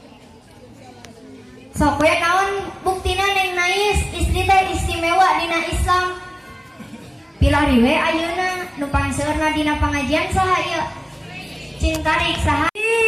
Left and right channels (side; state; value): both; identical; correlation 1.00